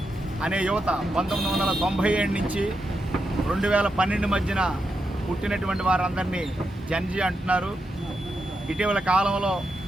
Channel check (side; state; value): both; normal; correlation 0.85